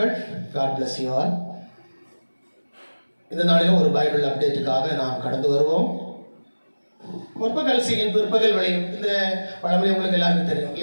God bless you all. இந்த நாளிலும் ஒரு பைபிள் அப்டேட்டுக்காக நாம் கடந்து வருவோம். முற்பகல் செய்யும் பிற்பகல் விளையும் இந்த பழமொழி உங்களுக்கு எல்லாருக்கும் தெரியும்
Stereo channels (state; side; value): inverted; both; correlation -1.00